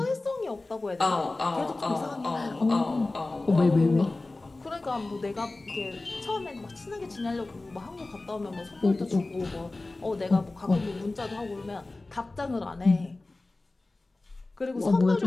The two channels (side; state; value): right; quieter; 3.1 dB